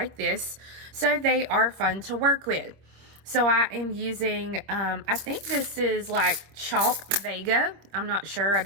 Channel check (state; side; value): late; left; 26 ms